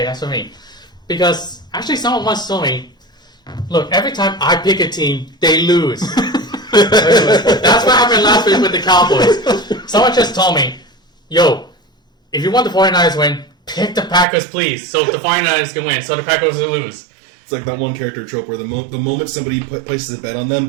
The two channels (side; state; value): left; drops out; at 14.2 s